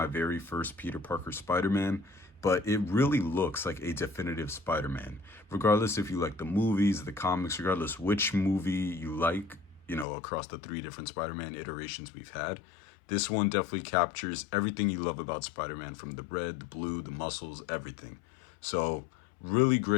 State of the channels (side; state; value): right; drops out; at 10.1 s